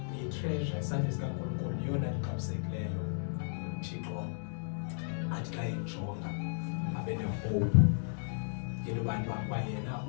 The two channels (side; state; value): right; silent; digital silence